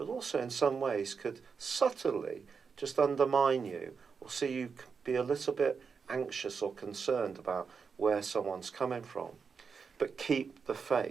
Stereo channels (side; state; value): left; quieter; 5.7 dB